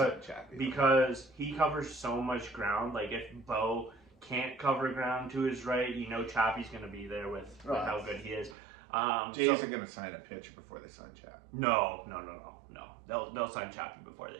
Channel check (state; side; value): drops out; left; at 8.6 s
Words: he covers so much ground. Like if Bo can't cover ground to his right, Chappie's going to be there with how good he is. Jays are going to sign a pitcher before they sign Chappie. No. They'll sign Chappie before they